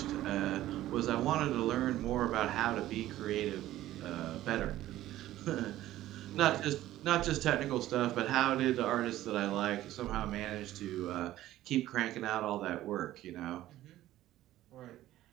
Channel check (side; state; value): left; quieter; 14.5 dB